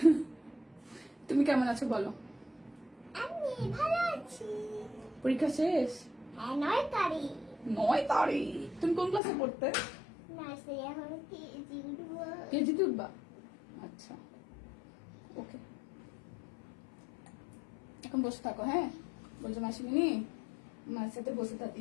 তুমি কেমন আছো বলো? আমি ভালো আছি। পরীক্ষা শেষ? হ্যাঁ, 9 তারিখ। 9 তারিখ। তুমি কোন ক্লাসে পড়তে? নার্সারি, এখন কেজি উঠবো। কেজিতে উঠবা? আচ্ছা, ওকে। এখন বসে থাকো, হ্যাঁ? বলছো মাসিমিনি মার সাথে বসে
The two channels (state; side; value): drops out; right; at 9.2 s